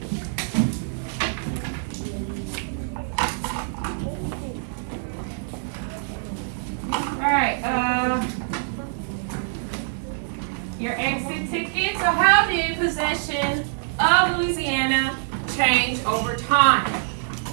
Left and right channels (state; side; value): silent; left; digital silence